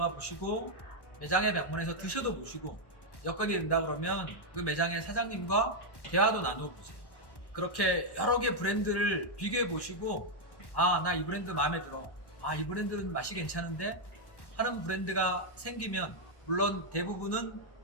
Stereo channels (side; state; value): right; late; 1.1 ms